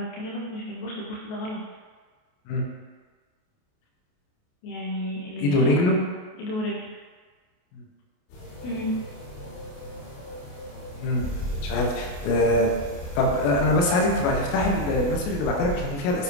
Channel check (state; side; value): late; right; 28 ms